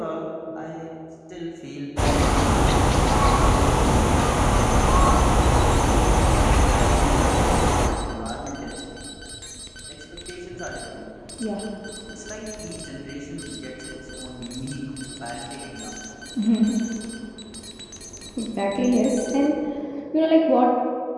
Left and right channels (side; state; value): both; identical; correlation 1.00